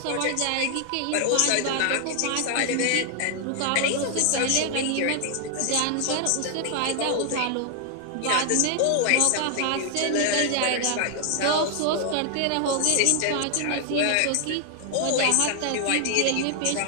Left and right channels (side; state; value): both; different; correlation 0.00